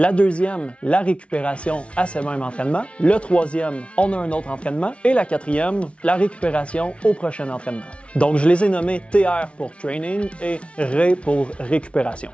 deuxième, la récupération à ce même entraînement. Le troisième, on a un autre entraînement. Et la quatrième, la récupération au prochain entraînement. Donc, je les ai nommés TR pour training et RE pour récupération.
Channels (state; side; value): late; right; 0.061 ms